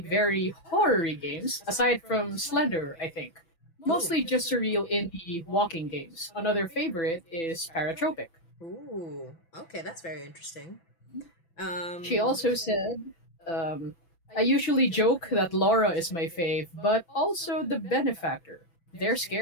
very horror-y games, aside from Slender, I think. Mostly just surreal indie walking games. Another favorite is Paratropic. Ooh, okay, that's very interesting. She also said, I usually joke that Laura is my fave, but also the Benefactor. They're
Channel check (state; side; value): late; right; 6.0 ms